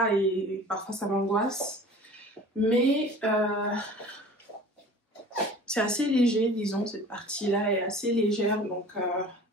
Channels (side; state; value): both; normal; correlation 0.43